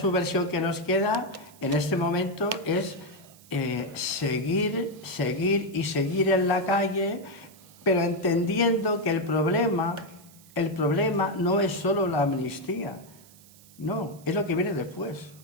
que nos queda en este momento es seguir en la calle, pero entendiendo que el problema no es solo la amnistía, no, es lo que viene después.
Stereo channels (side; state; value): right; noise; hiss, 24 dB below the sound